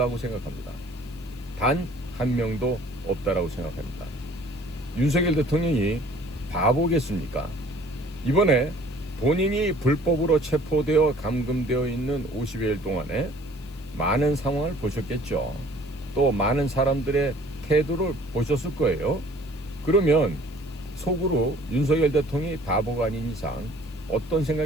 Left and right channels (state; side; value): noise; left; hiss, 26 dB below the sound